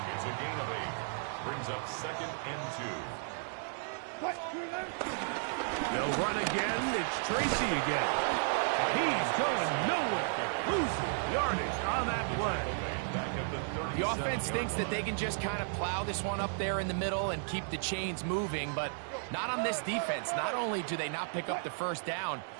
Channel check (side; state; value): left; silent; 55 dB below the other